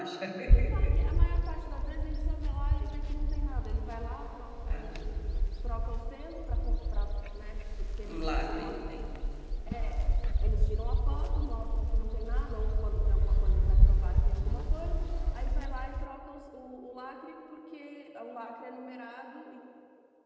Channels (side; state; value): both; identical; correlation 1.00